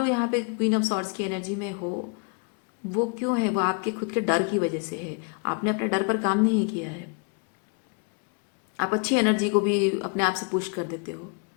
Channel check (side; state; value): right; quieter; 34.5 dB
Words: यहाँ पे क्वीन ऑफ सॉर्ड्स की एनर्जी में हो, वो क्यों है? वो आपके खुद के डर की वजह से है। आपने अपने डर पर काम नहीं किया है। आप अच्छी एनर्जी को भी अपने आप से पुश कर देते हो।